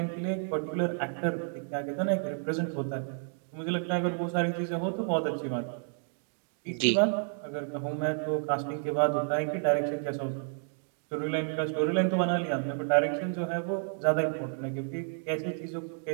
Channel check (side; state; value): left; silent; 57 dB below the other